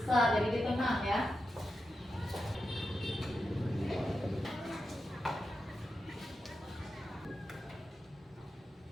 jadi di tengah ya.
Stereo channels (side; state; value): both; normal; correlation 0.89